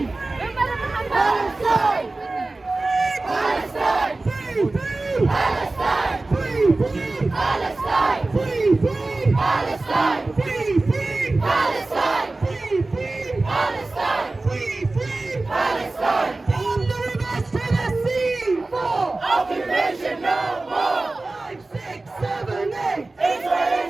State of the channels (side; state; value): left; quieter; 3.2 dB